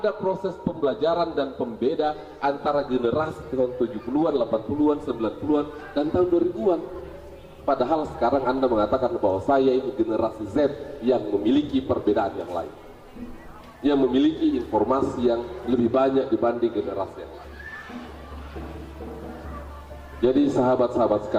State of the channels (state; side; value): identical; both; correlation 1.00